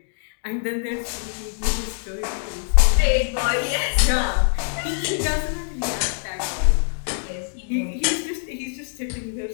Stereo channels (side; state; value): right; silent; 63 dB below the other